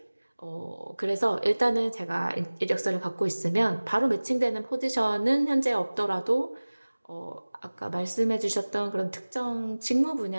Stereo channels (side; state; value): both; inverted; correlation -1.00